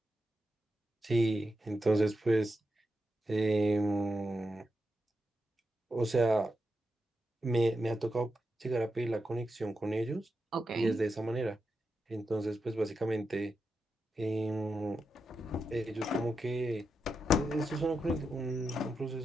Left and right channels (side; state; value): both; normal; correlation 0.87